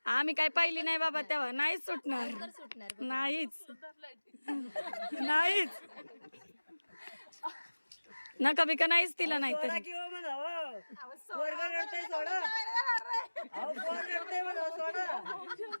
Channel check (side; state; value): both; inverted; correlation -1.00